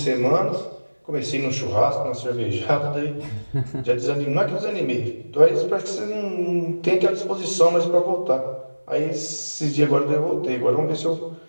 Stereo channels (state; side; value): inverted; both; correlation -1.00